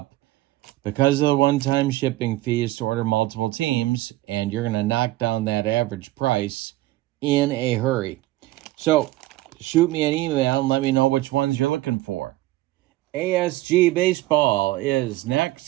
because of the one-time shipping fee, is to order multiple teams, and you're going to knock down that average price in a hurry. So shoot me an email and let me know which ones you're looking for. ASG Baseball is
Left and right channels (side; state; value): left; quieter; 17.4 dB